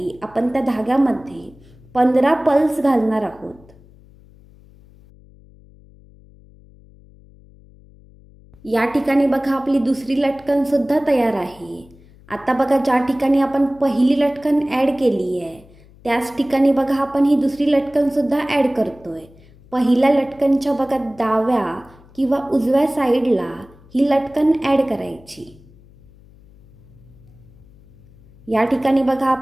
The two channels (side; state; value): left; noise; hum, 25 dB below the sound